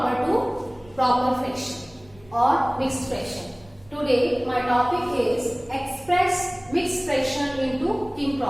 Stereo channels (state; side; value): noise; right; rumble, 25 dB below the sound